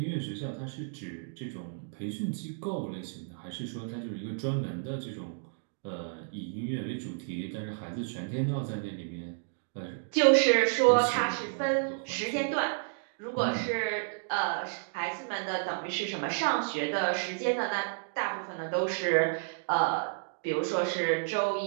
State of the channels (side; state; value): left; silent; digital silence